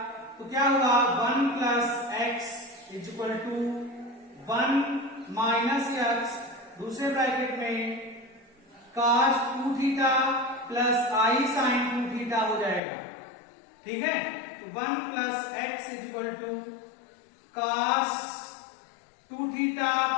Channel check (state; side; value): drops out; right; at 12.8 s